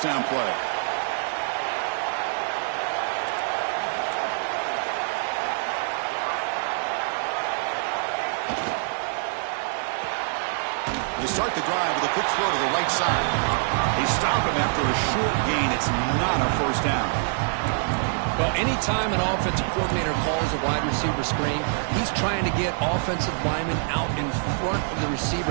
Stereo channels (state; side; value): silent; left; digital silence